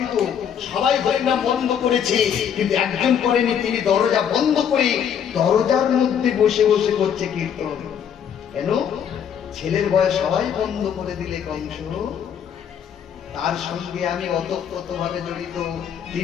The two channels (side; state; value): right; quieter; 8.3 dB